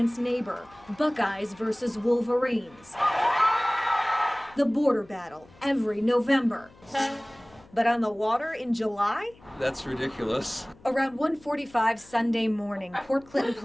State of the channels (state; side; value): noise; left; hum, 26 dB below the sound